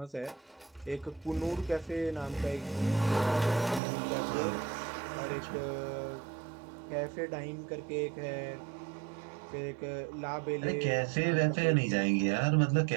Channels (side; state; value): left; drops out; at 3.8 s